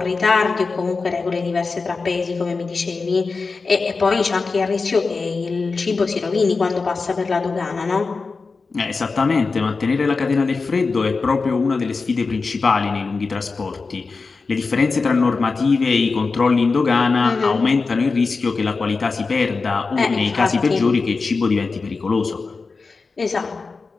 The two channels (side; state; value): right; quieter; 4.3 dB